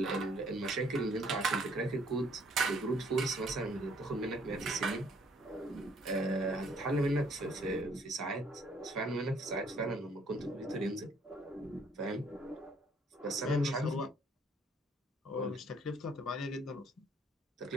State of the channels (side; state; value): both; normal; correlation 0.62